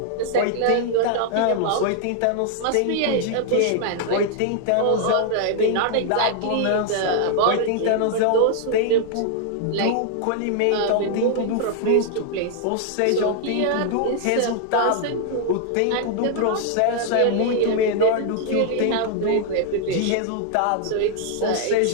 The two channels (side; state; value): both; different; correlation 0.00